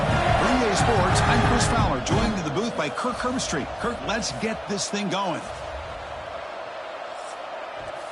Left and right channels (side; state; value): both; identical; correlation 1.00